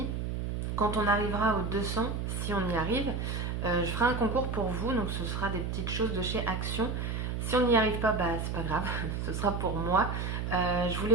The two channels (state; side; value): noise; right; hum, 2 dB below the sound